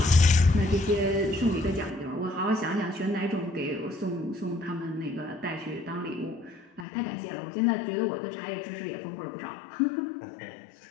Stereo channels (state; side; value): drops out; right; at 6.9 s